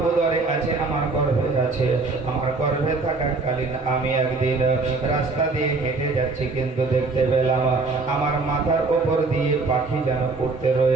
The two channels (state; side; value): quieter; left; 3.8 dB